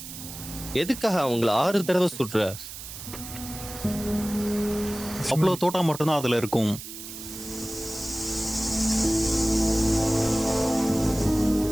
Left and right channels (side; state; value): right; noise; hiss, 11 dB below the sound